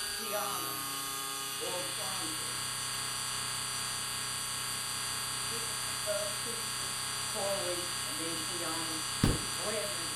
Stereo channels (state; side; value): identical; both; correlation 1.00